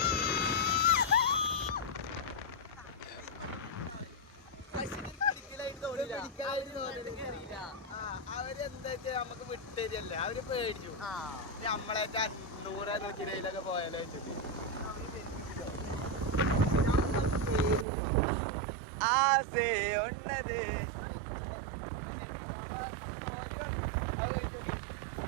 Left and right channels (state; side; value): drops out; left; at 17.9 s